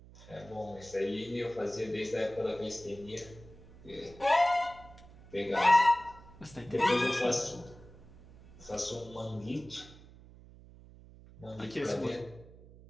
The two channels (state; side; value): noise; right; hum, 21 dB below the sound